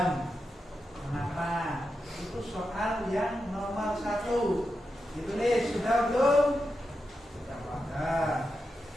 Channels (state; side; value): normal; both; correlation 0.88